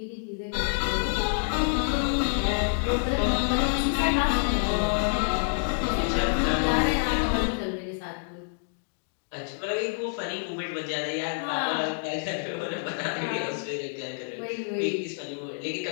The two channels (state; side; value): silent; right; digital silence